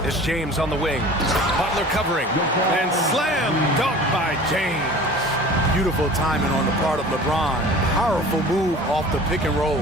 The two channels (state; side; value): normal; both; correlation 0.42